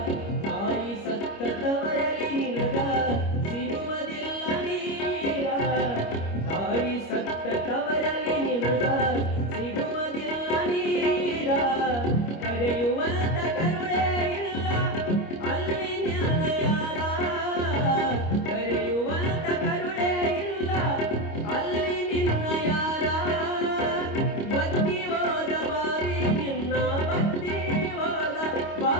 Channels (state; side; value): late; right; 25 ms